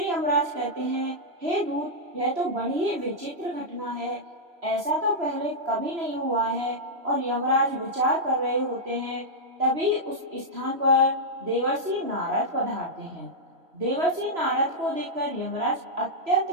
यमराज कहते हैं, हे दूत, यह तो बड़ी ही विचित्र घटना है। ऐसा तो पहले कभी नहीं हुआ है। और यमराज विचार कर रहे होते हैं, तभी उस स्थान पर देवर्षि नारद पधारते हैं। देवर्षि नारद को देखकर यमराज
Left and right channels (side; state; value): left; late; 3.0 ms